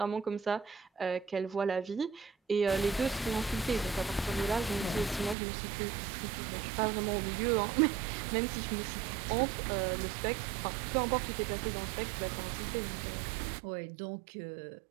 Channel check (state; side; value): drops out; left; at 5.4 s